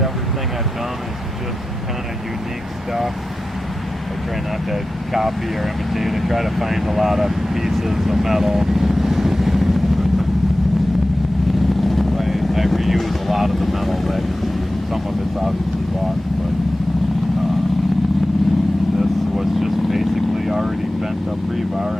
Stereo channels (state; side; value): normal; both; correlation 0.94